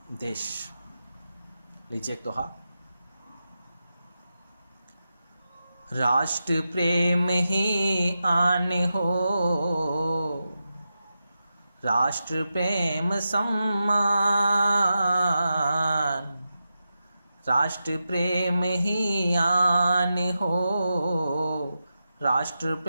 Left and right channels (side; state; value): both; inverted; correlation -0.90